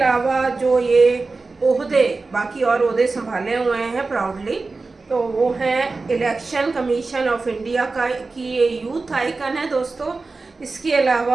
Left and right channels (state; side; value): quieter; left; 3.8 dB